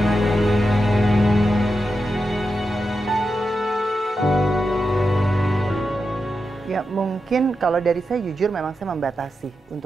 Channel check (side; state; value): both; normal; correlation 0.88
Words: mungkin kalau dari saya jujur memang saya membatasi